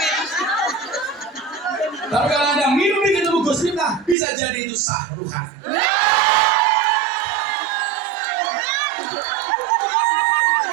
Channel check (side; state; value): left; drops out; at 4.2 s